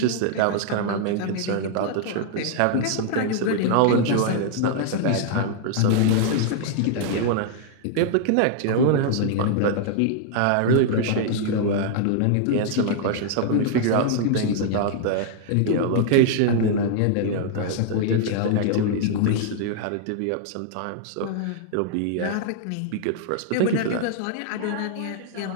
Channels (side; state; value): both; different; correlation -0.01